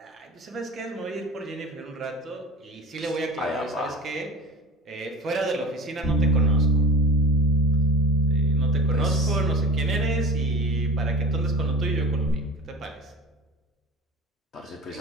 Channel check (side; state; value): both; normal; correlation 0.36